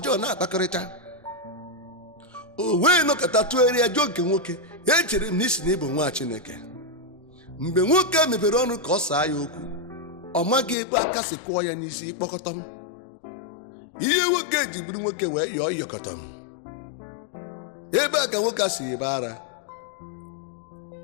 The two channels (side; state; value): right; drops out; at 10.8 s